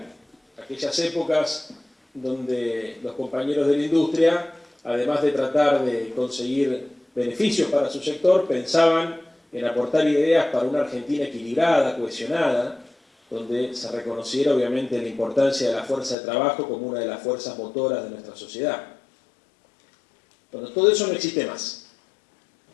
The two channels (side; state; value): right; drops out; at 16.2 s